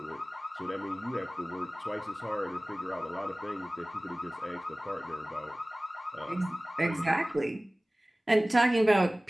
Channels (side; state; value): both; normal; correlation 0.98